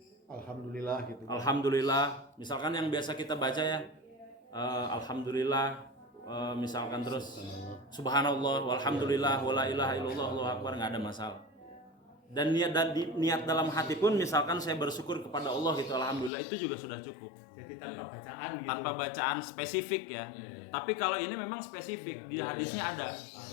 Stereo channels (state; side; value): drops out; right; at 16.3 s